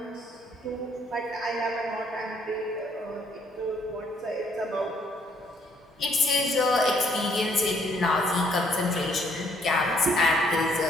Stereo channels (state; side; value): normal; both; correlation 0.66